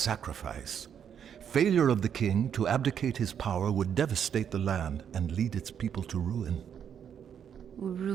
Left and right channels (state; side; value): quieter; left; 8.3 dB